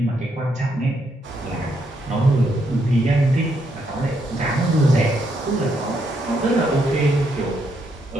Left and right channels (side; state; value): both; normal; correlation 0.76